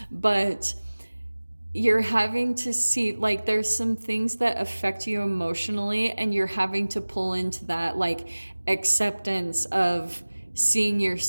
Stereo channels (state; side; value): inverted; both; correlation -1.00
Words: But you're having to see, like, there's some things that affect you emotionally, and you're having to pull into that, like, acceptance of seeing